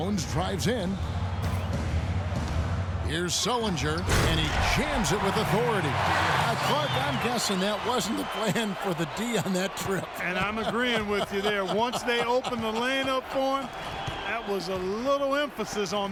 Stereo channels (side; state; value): both; identical; correlation 1.00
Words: drives in. Here's Sullinger, and he jams it with authority. Clark, I'm guessing that wasn't the plan for the D on that trip. And I'm agreeing with you there. Once they opened the lane up for him, that was a little emphasis